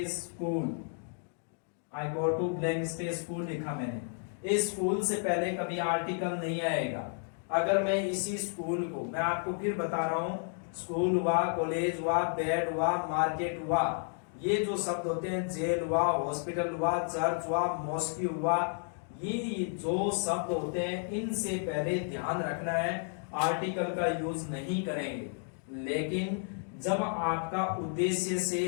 school, I go to blank space school लिखा मैंने। इस स्कूल से पहले कभी आर्टिकल नहीं आएगा। अगर मैं इसी स्कूल को, मैं आपको फिर बता रहा हूं, स्कूल हुआ, कॉलेज हुआ, बेड हुआ, मार्केट हुआ, ये जो शब्द होते हैं, जेल हुआ, हॉस्पिटल हुआ, चर्च हुआ, मॉस्क हुआ, ये जो शब्द होते हैं, इनसे पहले ध्यान रखना है आर्टिकल का यूज नहीं करेंगे। लेकिन जब आपका उद्देश्य से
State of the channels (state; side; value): silent; right; 56 dB below the other